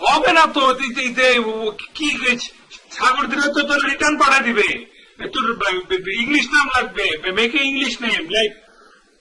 হবে না তো। কি সাগর দিলে তো তোর রিটার্ন পাঠা দিবে। তোর ইংলিশ নাম লাগবে, মেকে ইংলিশ নেম লাইক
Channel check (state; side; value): identical; both; correlation 1.00